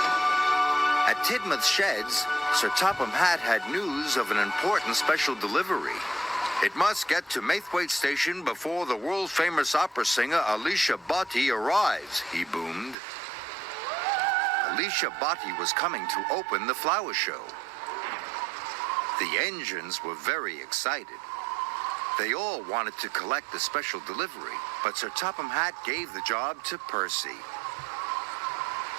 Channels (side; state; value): left; drops out; at 13.0 s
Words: At Tidmouth Sheds, Sir Topham Hatt had news of an important special delivery. It must get to Maithwaite Station before the world-famous opera singer Alicia Botti arrives, he boomed. Alicia Botti was coming to open the flower show. The engines were very excited. They all wanted to collect the special delivery, but Sir Topham Hatt gave the job to Percy.